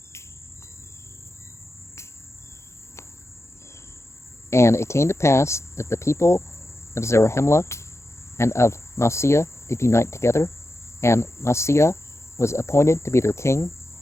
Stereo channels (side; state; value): right; late; 0.13 ms